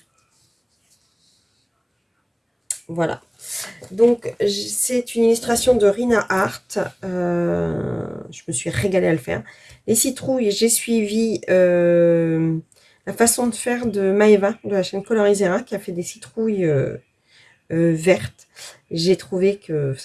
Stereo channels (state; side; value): identical; both; correlation 1.00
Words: Voilà. Donc, c'est une illustration de Rina Art. Je me suis régalée à le faire. Les citrouilles, j'ai suivi la façon de faire de Maeva, de la chaîne Colorizera, qui a fait des citrouilles vertes. J'ai trouvé que